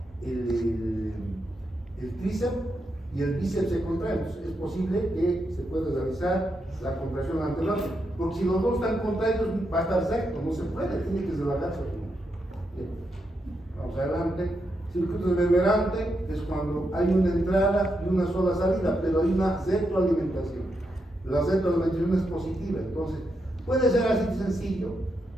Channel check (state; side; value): normal; both; correlation 0.83